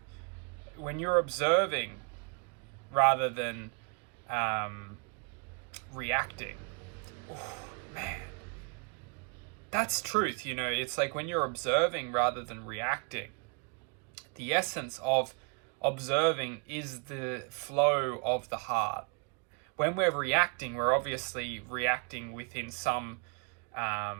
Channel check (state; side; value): quieter; left; 34.6 dB